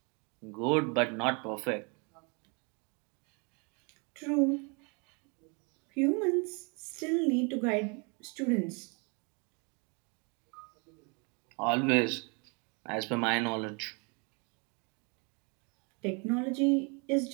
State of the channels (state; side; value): quieter; left; 33.2 dB